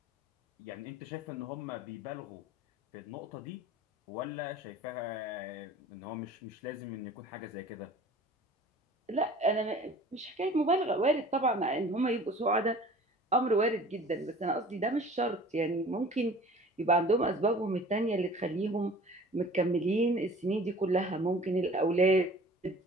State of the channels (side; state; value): both; normal; correlation 0.46